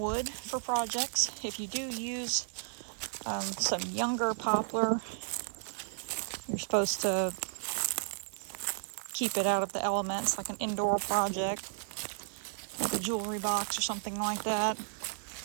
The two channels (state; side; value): silent; left; 55 dB below the other